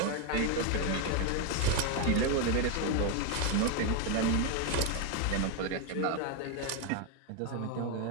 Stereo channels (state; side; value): different; both; correlation 0.02